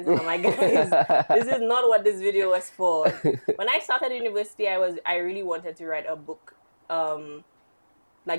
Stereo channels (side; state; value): both; inverted; correlation -1.00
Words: and I'm like, guys, this is not what this video was for. When I started university, I really wanted to write a book,